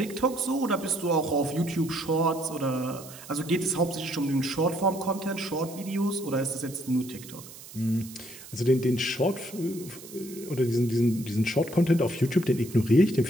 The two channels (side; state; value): right; noise; hiss, 16 dB below the sound